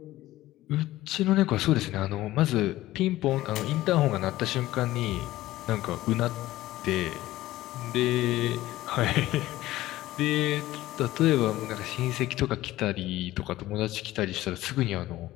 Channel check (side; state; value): right; quieter; 16.3 dB